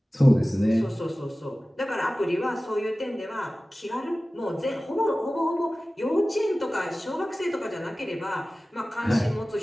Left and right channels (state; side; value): normal; both; correlation 0.97